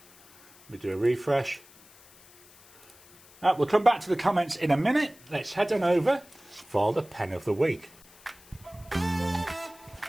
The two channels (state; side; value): noise; left; hiss, 25 dB below the sound